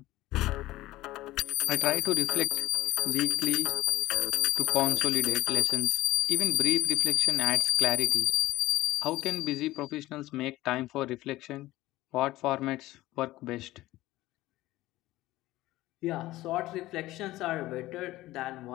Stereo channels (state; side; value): quieter; right; 17.2 dB